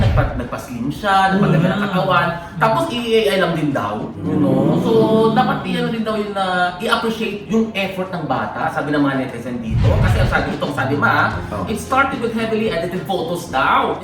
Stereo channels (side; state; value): both; identical; correlation 1.00